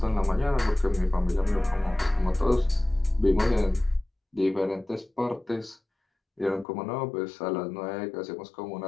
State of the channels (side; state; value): right; drops out; at 6.7 s